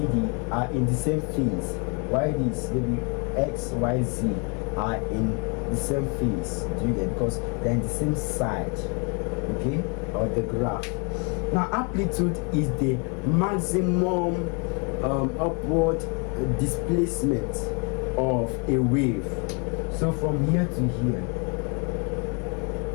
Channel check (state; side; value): quieter; right; 33.7 dB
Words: D are in the same phase. Why this? Maybe X, Y, Z are in the same phase. Do you get? Because they're in the same side, okay, of the graph. Now, amplitude is the maximum upward displacement of a wave. So from here to here,